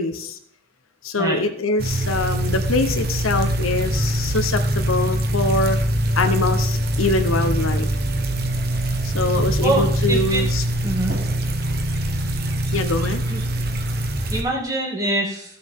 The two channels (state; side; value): normal; both; correlation 0.50